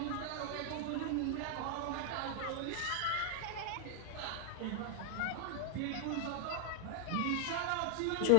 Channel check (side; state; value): both; different; correlation 0.00